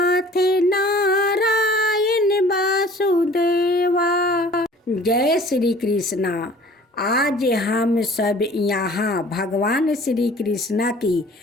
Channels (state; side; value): normal; both; correlation 0.49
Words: नारायण वासुदेवा। जय श्री कृष्णा। आज हम सब यहाँ भगवान श्री कृष्णा की